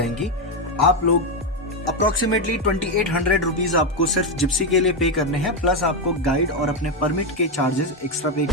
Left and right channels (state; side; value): normal; both; correlation 0.10